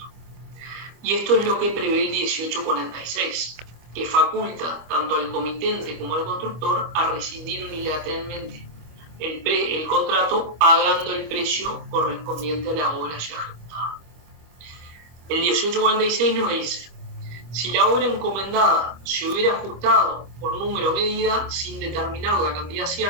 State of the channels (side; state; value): left; late; 25 ms